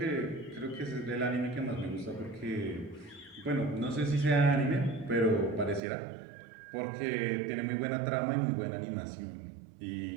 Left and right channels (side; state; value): left; drops out; at 5.8 s